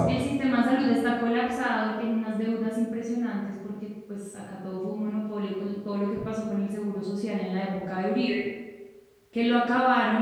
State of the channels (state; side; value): identical; both; correlation 1.00